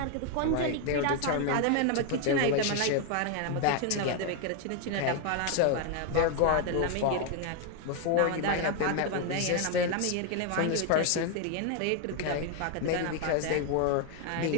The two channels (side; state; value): both; different; correlation 0.01